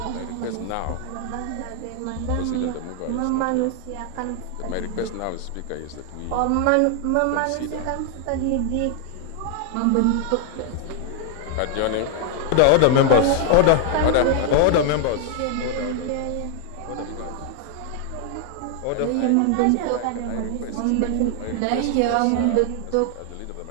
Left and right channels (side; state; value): both; different; correlation 0.00